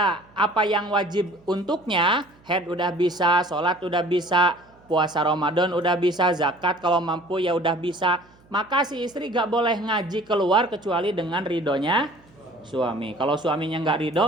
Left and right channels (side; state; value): right; noise; hum, 29 dB below the sound